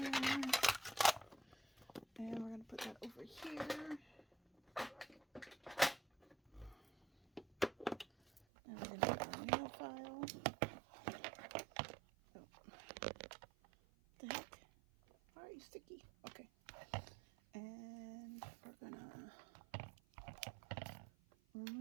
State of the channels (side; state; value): left; drops out; at 8.4 s